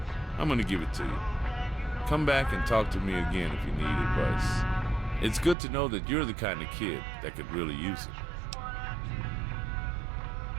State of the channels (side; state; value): left; drops out; at 5.6 s